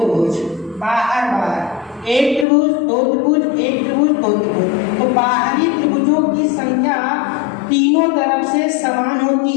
बाहर 1 त्रिभुज 2 त्रिभुज 1 त्रिभुज 2 त्रिभुज। तो बाहरी त्रिभुजों की संख्या तीनों तरफ से समान होती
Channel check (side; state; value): right; drops out; at 2.5 s